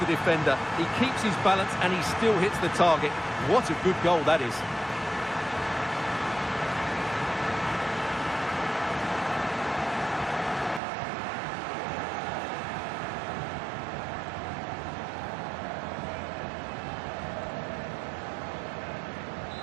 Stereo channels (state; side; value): drops out; left; at 10.8 s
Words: defender. He keeps his balance and he still hits the target. What a good goal that is.